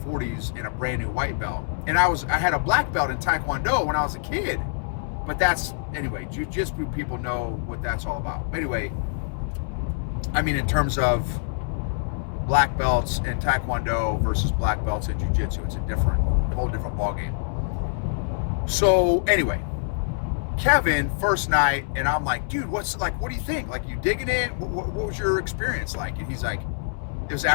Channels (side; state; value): right; silent; 62 dB below the other